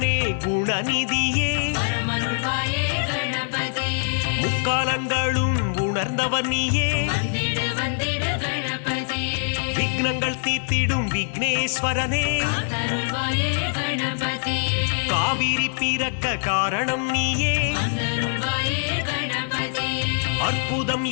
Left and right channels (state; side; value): silent; right; digital silence